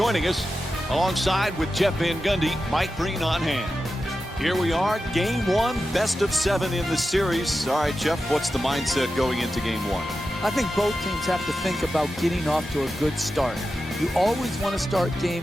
us. Alongside with Jeff Van Gundy, Mike Green on hand. Here we are, game one, best of 7 in the series. All right, Jeff, what's the mindset going into game one? I think both teams have to think about getting off to a good start. You always want to start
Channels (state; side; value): normal; both; correlation 0.91